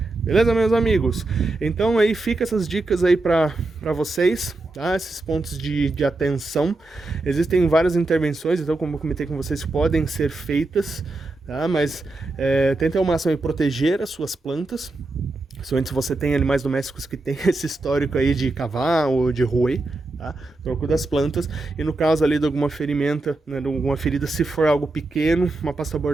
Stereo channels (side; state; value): left; quieter; 3.0 dB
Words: Beleza, meus amigos? Então aí fica essas dicas aí para vocês, tá? Esses pontos de atenção. Existem várias intervenções, então como eu comentei com vocês, podem ser feitas, tá? Mas tentem ao máximo proteger as suas plantas, principalmente se você tem animais domésticos que tem esse histórico aí de cavar ou de roer, tá? tá? Tronco das plantas, e no caso ali de alguma ferimenta, né, de alguma ferida, se for algo pequeno, uma pasta